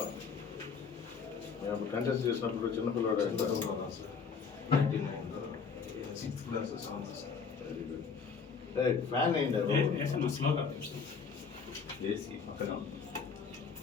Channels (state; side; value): quieter; right; 5.7 dB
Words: మేము కంటెస్ట్ చేసినప్పుడు చిన్నపిల్లవాడు సార్ 99లో 6th class 7th sir. Fan అయింది ఏసీ పక్కన